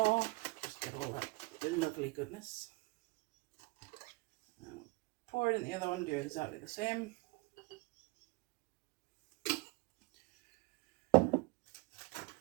just get all that lovely goodness. Pour it in the other one, do exactly the same.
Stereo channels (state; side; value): quieter; left; 24.0 dB